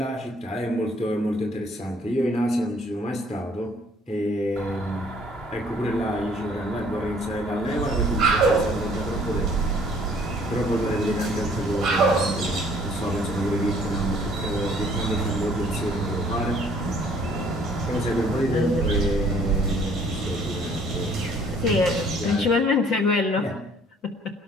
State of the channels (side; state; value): both; normal; correlation 0.58